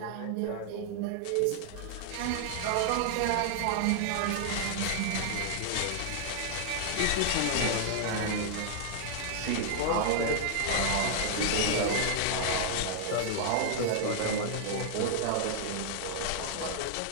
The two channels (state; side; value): different; both; correlation -0.01